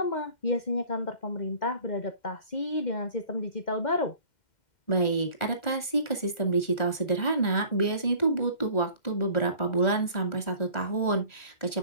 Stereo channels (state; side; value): late; right; 1.4 ms